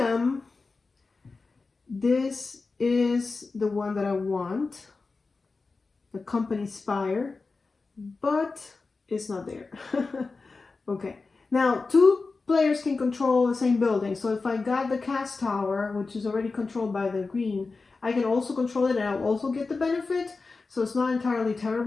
this is the one that I want, the company Spire, but it's not there. Okay, now 2 players can control the same building. So if I got the cast tower, which is already controlled by the green, I can also control it and I'll also get the benefit. So it's not entirely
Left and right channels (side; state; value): right; quieter; 4.0 dB